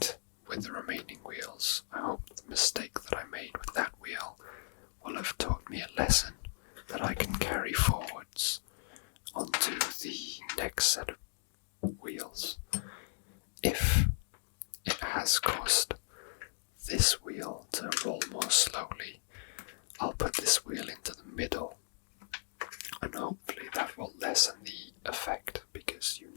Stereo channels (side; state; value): right; silent; digital silence